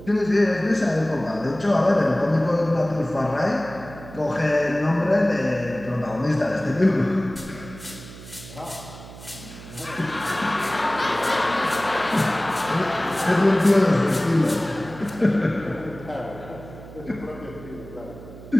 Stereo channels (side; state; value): right; noise; hum, 16 dB below the sound